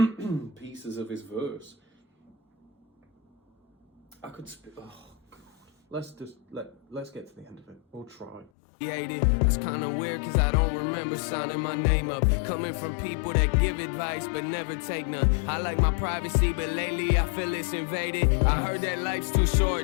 pieces of his verse. I could oh God. Let's get to the end of it. We'll try. That's kinda weird, cause I don't remember signing my name up. Coming from people that give advice but never take none. I like my privacy, but lately I feel it's invaded. I heard that life's too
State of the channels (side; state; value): right; drops out; at 8.5 s